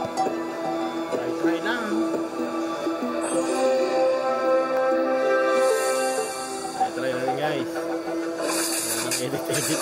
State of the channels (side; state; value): both; identical; correlation 1.00